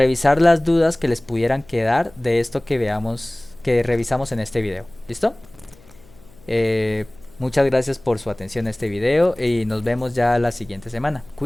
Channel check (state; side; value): noise; left; hum, 26 dB below the sound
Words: las dudas que les pudieran quedar de esto que veamos, que revisamos en este video. ¿Listo? Eh, Muchas gracias por su atención a este video y nos vemos ya la siguiente semana.